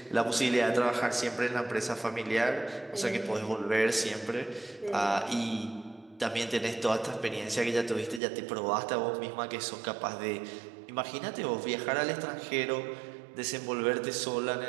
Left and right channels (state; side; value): drops out; left; at 8.2 s